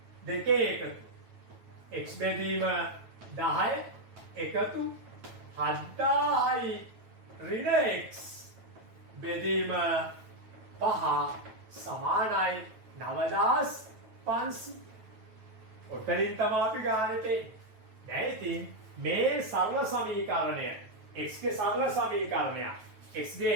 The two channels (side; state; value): left; late; 9.2 ms